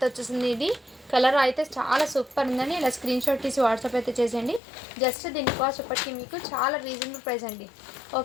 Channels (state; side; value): drops out; right; at 4.6 s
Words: వచ్చేసింది. ఇది కలర్ అయితే చాలా సూపర్ ఉందండి. ఇలా స్క్రీన్ షాట్ తీసి వాట్సాప్ అయితే చేసేయండి. జస్ట్ దీని కాస్ట్ ఇప్పటికీ మీకు చాలా రీజనబుల్ ప్రైస్ అండి.